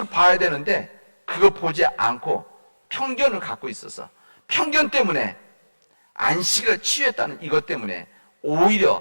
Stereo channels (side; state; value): both; inverted; correlation -1.00